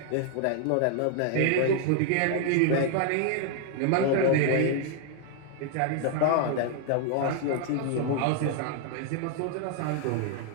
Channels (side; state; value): both; different; correlation 0.00